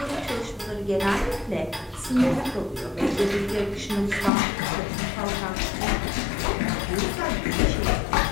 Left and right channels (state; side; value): drops out; right; at 4.3 s